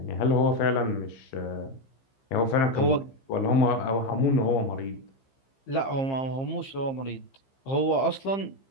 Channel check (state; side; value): late; right; 15 ms